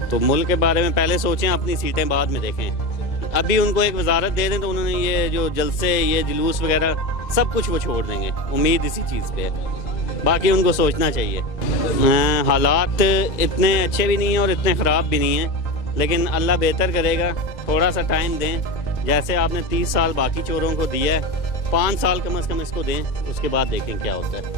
तो मुल्क के बारे में पहले सोचें, अपनी सीटें बाद में देखें। अभी उनको एक वजारत दे दें तो उन्होंने ये जो जलसे ये जुलूस वगैरह सब कुछ वो छोड़ देंगे, उम्मीद इसी चीज़ पे है। बाकी उनको सोचना चाहिए। हालात इतने अच्छे भी नहीं हैं और इतने ख़राब भी नहीं हैं, लेकिन अल्लाह बेहतर करेगा, थोड़ा सा टाइम दें। जैसे आपने 30 साल बाकी चोरों को दिया है, 5 साल कम से कम इसको दें, उसके बाद देखें क्या होता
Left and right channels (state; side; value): late; right; 1.9 ms